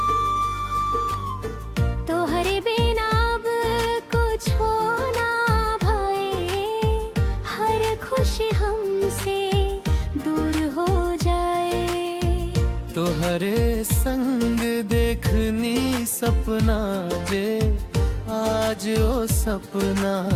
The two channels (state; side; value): identical; both; correlation 1.00